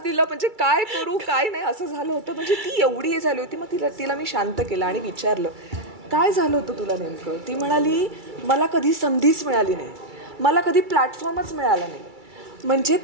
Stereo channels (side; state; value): left; late; 2.3 ms